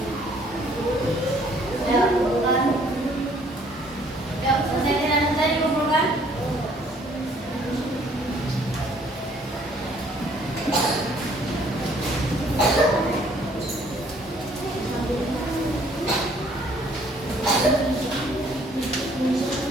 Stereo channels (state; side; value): normal; both; correlation 0.61